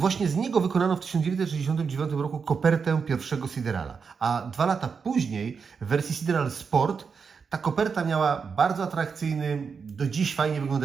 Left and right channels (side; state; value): left; quieter; 5.7 dB